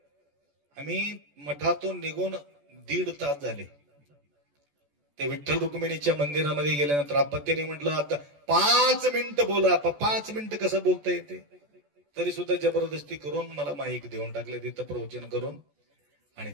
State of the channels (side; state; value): left; late; 14 ms